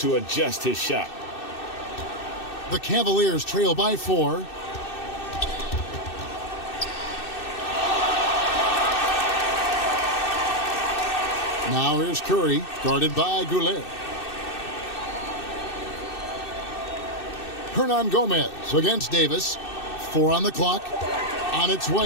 adjust his shot. The Cavaliers trail by 4. Now here's Curry, guarded by Goulet. Hernan Gomez against Davis. 4 on the clock. On its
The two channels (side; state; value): right; late; 2.6 ms